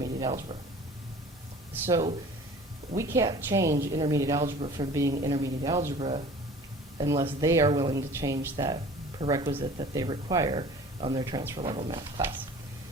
algebra. So we can't change intermediate algebra from being intermediate algebra unless they are willing to change that prerequisite that they require on their transfer level math class.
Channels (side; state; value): both; normal; correlation 0.45